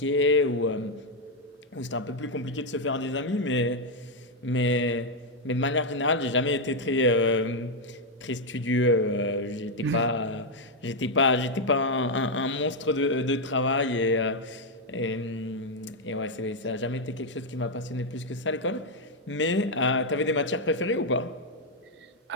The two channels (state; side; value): normal; both; correlation 0.01